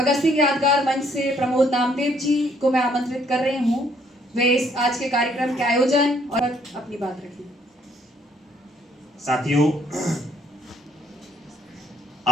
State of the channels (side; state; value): both; normal; correlation 0.66